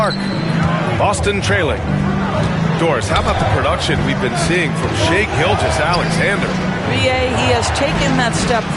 Boston trailing. Doris, how about the production we've been seeing from Shai Gilgeous-Alexander? BA, he has taken that step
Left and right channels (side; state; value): both; identical; correlation 1.00